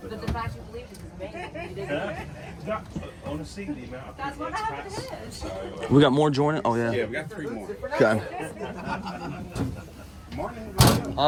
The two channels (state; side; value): identical; both; correlation 1.00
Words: But the fact you believe this is amazing. You didn't. Honestly, the amount of That's what happened. We got more joining? Oh, Yeah, yeah. we got 3 more. Okay. Morning.